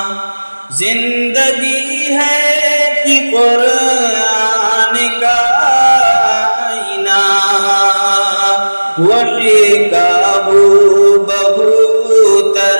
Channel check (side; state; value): both; inverted; correlation -1.00